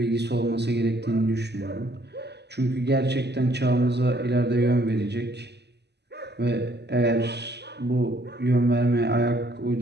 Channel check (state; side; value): late; left; 0.49 ms